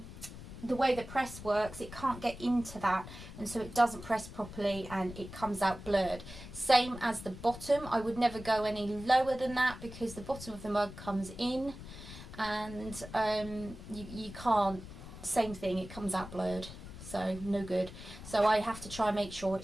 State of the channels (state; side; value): noise; left; rumble, 13 dB below the sound